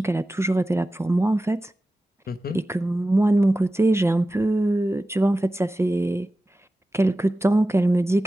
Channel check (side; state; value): both; normal; correlation 0.95